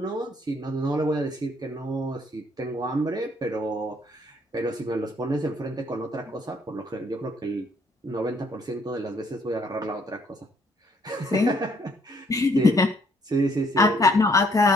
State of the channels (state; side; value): normal; both; correlation 0.66